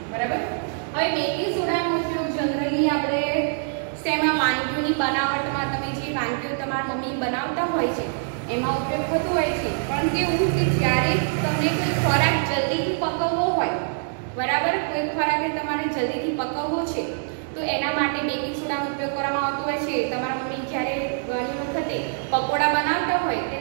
બરાબર. હવે બેકિંગ સોડાનો ઉપયોગ જનરલી આપણે શેમાં, વાનગીઓની બનાવટમાં, તમે જે વાનગીઓ તમારા મમ્મી બનાવતા હોય છે એમાં ઉપયોગ થતો હોય છે. પણ કેવું કે જ્યારે તમને કોઈ ખોરાક જલ્દીથી પકવવો હોય, બરાબર, કોઈ ખોરાકને તમારે જલ્દીથી પકવવો છે તો એના માટે બેકિંગ સોડાનો ઉપયોગ કરવામાં આવતો હોય છે. તમારા મમ્મી જ્યારે ઘણી વખતે પકોડા બનાવતા હોય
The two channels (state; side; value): silent; left; digital silence